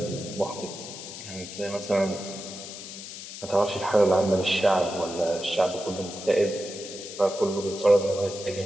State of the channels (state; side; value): noise; left; hiss, 11 dB below the sound